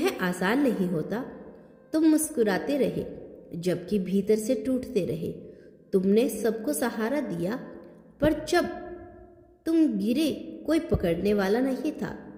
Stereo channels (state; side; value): identical; both; correlation 1.00